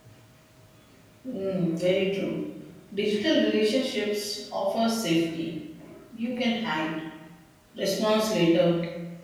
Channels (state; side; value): identical; both; correlation 1.00